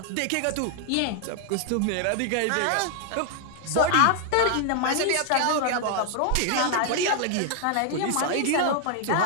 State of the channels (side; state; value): both; different; correlation 0.00